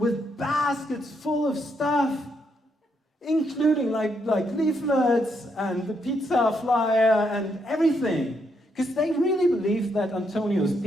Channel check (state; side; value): normal; both; correlation 0.77